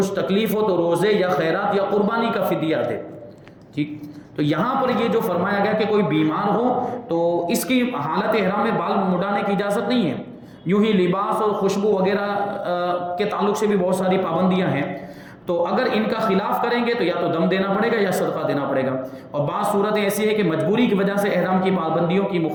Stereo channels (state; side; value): identical; both; correlation 1.00